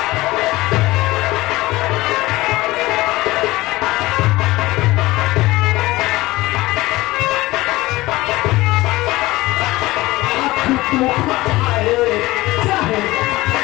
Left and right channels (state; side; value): quieter; right; 19.1 dB